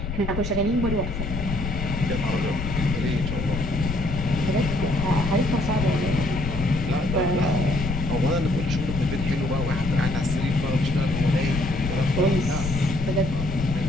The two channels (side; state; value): left; noise; rumble, 5 dB below the sound